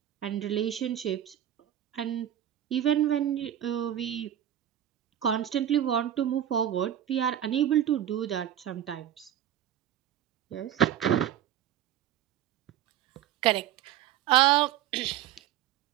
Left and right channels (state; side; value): quieter; left; 11.2 dB